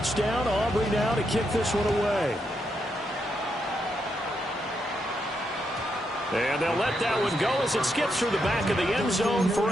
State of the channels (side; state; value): both; normal; correlation 0.81